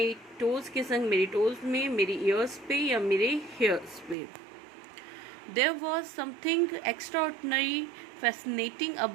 टोज के संग, मेरी टोज में, मेरी ईयर्स पे या मेरे हेयर्स पे. There was something extraordinary fascinating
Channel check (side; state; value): left; drops out; at 4.2 s